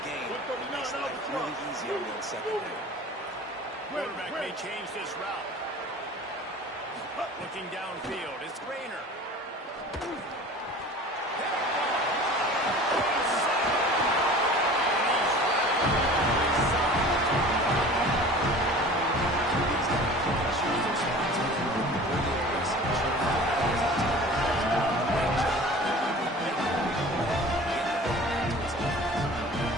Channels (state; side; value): normal; both; correlation 0.42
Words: gain. It makes life really easy on that second down. Quarterback may change this route. Looking downfield, it's Rainer.